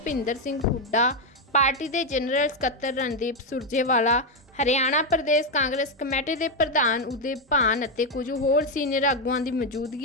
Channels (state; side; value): normal; both; correlation 0.05